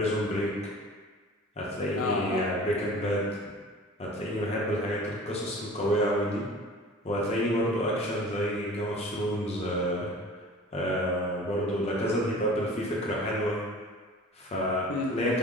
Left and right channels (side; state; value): both; normal; correlation 0.43